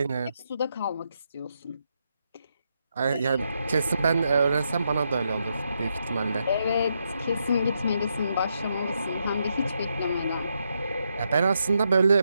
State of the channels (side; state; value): both; inverted; correlation -0.81